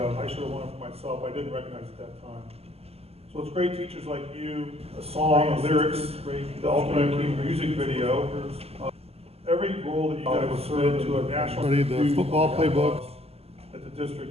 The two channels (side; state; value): left; late; 0.29 ms